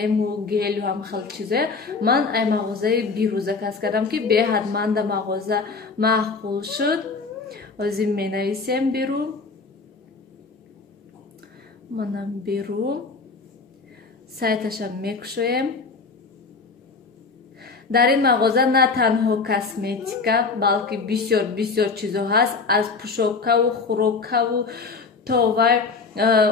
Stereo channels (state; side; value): quieter; right; 4.4 dB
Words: гелу ҳам хел чизое, ман ай мағозаи бирӯ заказ кардам ки беҳадманда мағоза маъқул шуд. Озим менависем бирӯ. манам беру сайташам мекушоем. дар ин мағоза на танҳо косметика, балки бисёр чизо ҳаст. Аз пӯшокаву хӯрокаву то вай